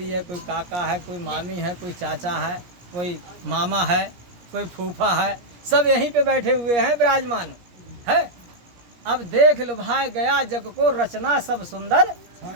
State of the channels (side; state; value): left; late; 17 ms